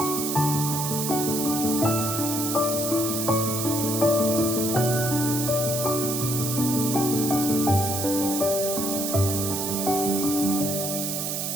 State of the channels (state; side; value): noise; right; hiss, 2 dB below the sound